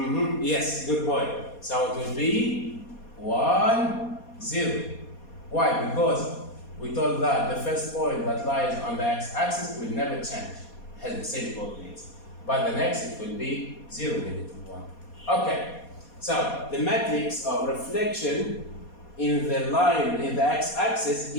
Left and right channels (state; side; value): late; right; 4.2 ms